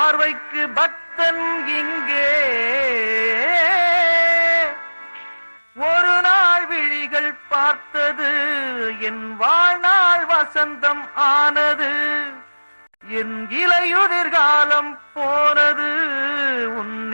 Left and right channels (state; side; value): inverted; both; correlation -1.00